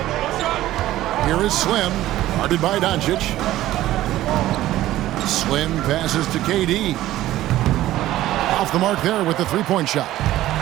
Here is Slim, guarded by Doncic. Slim passes to KD. Off the mark there with the 3-point shot.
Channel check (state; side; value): quieter; left; 14.8 dB